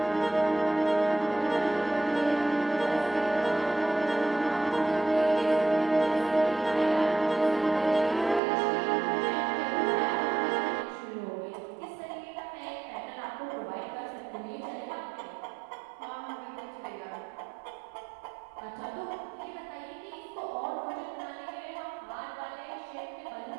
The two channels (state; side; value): drops out; left; at 8.4 s